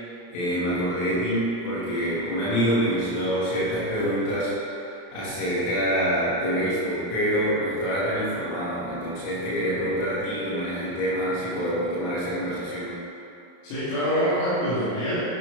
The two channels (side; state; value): right; late; 34 ms